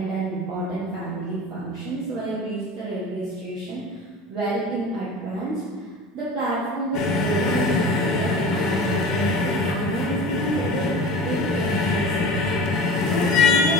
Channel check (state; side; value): normal; both; correlation 0.35